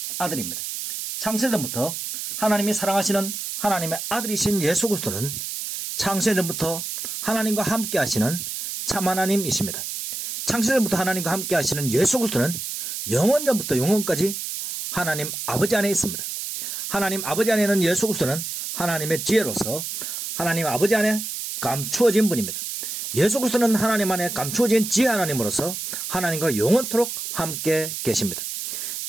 아들입니다. 창세전부터 하나님이 사랑하시는 하나님의 아들이신 예수 그리스도는 창세전부터 하나님과 함께 하시는 참 하나님이십니다. 창세전부터 하나님과 함께 하시는 예수 그리스도는 영원전부터 영원까지 하나님 아버지 안에 있습니다. 하나님 아버지 안에는 예수 그리스도는 하나님의 지혜로서 하나님 아버지 안에 감추어진 분입니다. 예수 그리스도는 하나님 안에 감추어진 지혜 하나님으로서 하나님과 영원토록 함께 계십니다.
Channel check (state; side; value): noise; right; hiss, 5 dB below the sound